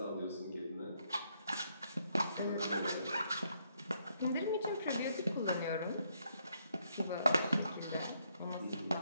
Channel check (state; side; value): inverted; both; correlation -0.74